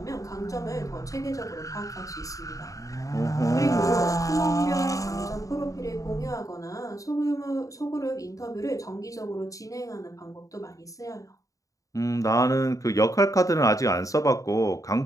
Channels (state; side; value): late; right; 0.16 ms